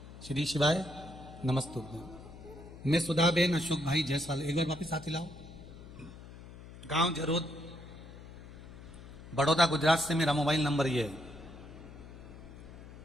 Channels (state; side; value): noise; left; hum, 16 dB below the sound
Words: श्री शिवाय नमस्तुभ्यं। मैं सुधाबेन अशोक भाई जायसवाल, एक बार वापिस हाथ हिलाओ। गांव जरोद, बड़ौदा, गुजरात से मेरा मोबाइल नंबर ये है।